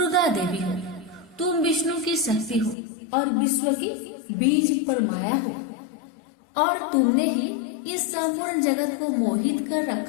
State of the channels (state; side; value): drops out; right; at 2.8 s